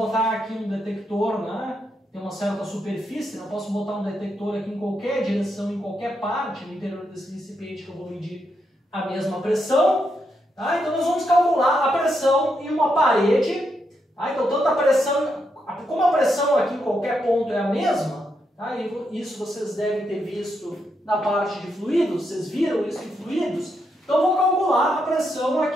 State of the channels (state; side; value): normal; both; correlation 0.81